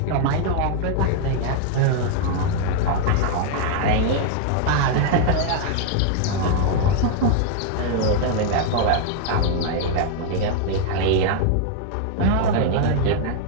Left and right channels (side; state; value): both; different; correlation 0.00